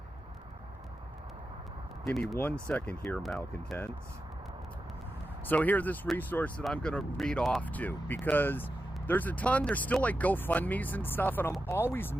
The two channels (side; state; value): both; normal; correlation 0.90